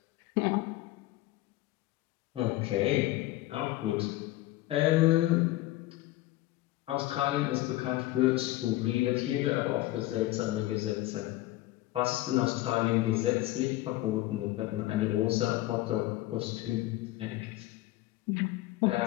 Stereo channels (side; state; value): right; quieter; 17.0 dB